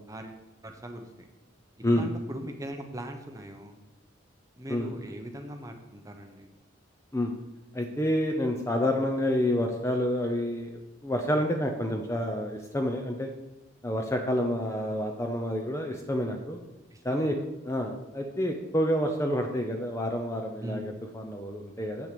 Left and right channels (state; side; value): normal; both; correlation 0.71